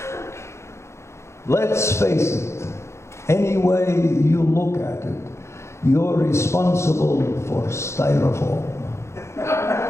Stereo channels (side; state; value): right; late; 0.13 ms